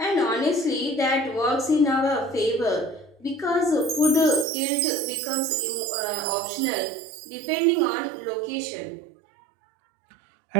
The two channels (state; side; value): drops out; left; at 4.5 s